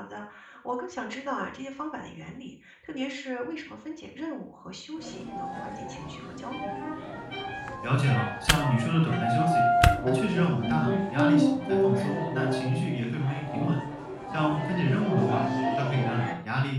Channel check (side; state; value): both; identical; correlation 1.00